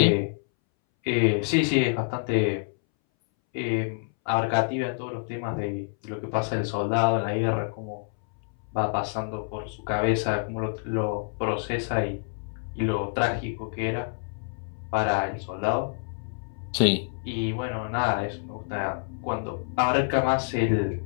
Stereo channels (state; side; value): silent; right; 60 dB below the other